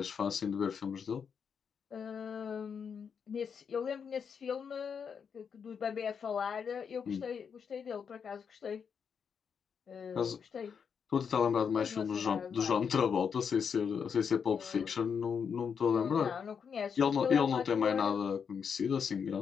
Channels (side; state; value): right; quieter; 6.7 dB